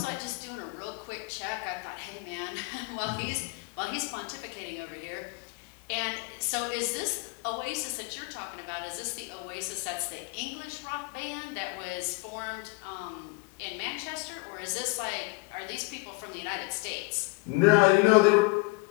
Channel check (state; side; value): quieter; right; 27.6 dB